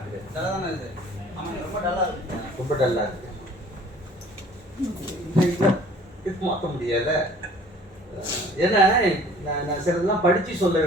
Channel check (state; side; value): normal; both; correlation 0.51